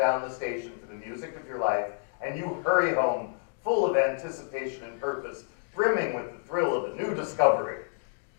the station for the music of your life, and you hurry home, full of anticipation and purpose, brimming with the thrill of a new discovery.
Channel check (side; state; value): right; silent; digital silence